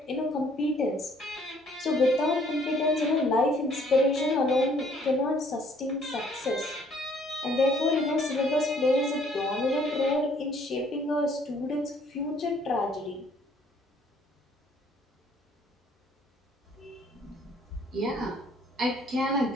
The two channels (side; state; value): both; normal; correlation 0.61